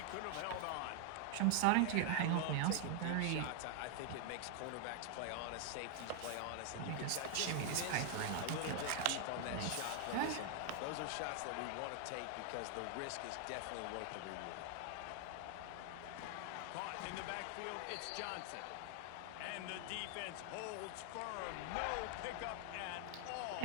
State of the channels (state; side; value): different; both; correlation 0.00